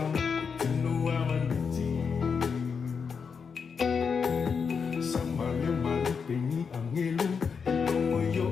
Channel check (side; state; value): right; quieter; 5.9 dB